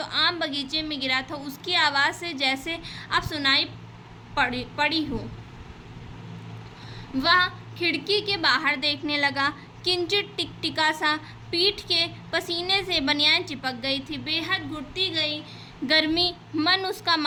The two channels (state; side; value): identical; both; correlation 1.00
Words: आम बगीचे में गिरा था उसकी आवाज़ से जैसे अब सुनाई पड़ी हो। वह खिड़की के बाहर देखने लगा। किंचित टिकटिका सा पीठ के पसीने से बनियान चिपक गई थी। बेहद घुटती गई गर्मी मन उसका